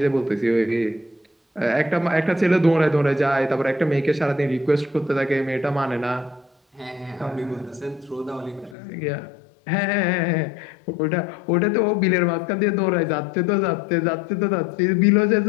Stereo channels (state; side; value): drops out; right; at 8.8 s